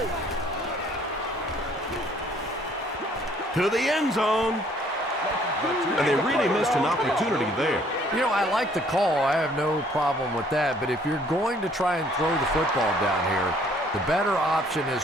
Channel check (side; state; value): both; normal; correlation 0.61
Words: To the end zone. And they really missed an opportunity there. You know, I like the call. I have no problem with that, but if you're going to try and throw the football down here, the better option